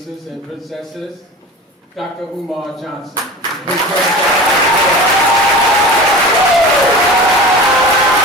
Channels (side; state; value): both; normal; correlation 0.34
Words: and princesses, Dr. Umar Johnson.